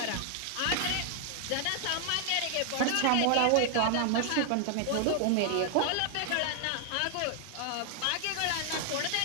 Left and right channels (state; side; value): different; both; correlation 0.00